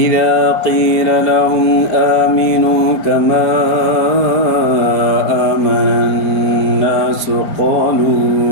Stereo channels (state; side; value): late; right; 5.0 ms